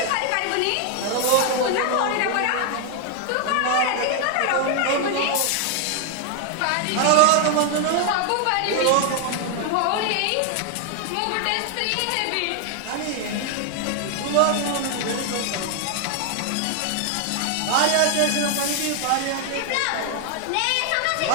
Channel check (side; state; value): both; different; correlation 0.00